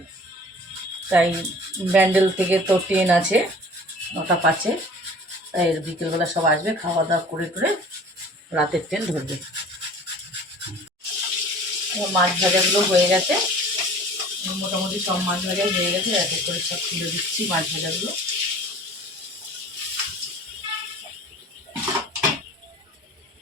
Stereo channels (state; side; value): normal; both; correlation 0.46